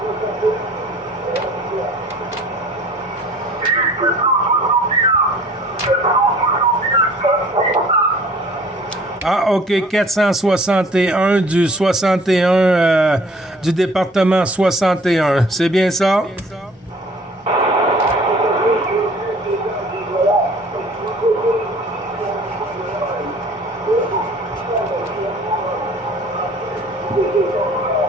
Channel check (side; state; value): both; normal; correlation 0.51